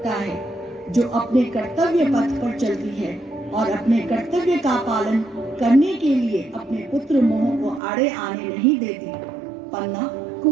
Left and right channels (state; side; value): drops out; left; at 7.8 s